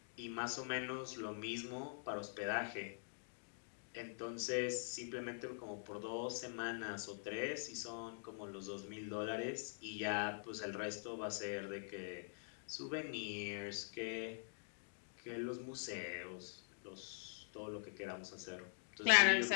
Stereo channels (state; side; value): silent; right; digital silence